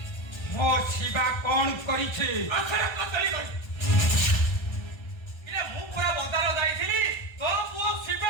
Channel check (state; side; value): late; right; 1.3 ms